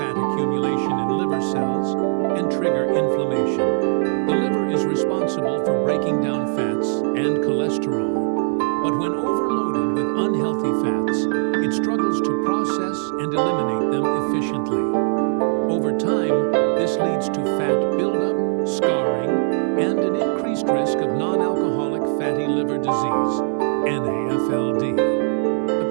accumulation in liver cells, and trigger inflammation. The liver is responsible for breaking down fats and cholesterol. But when overloaded with unhealthy fats, it struggles to process and eliminate them efficiently. Over time, this leads to fat buildup, scarring, and an increased risk of non-alcoholic fatty liver disease, NAFLD. But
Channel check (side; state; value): left; silent; 64 dB below the other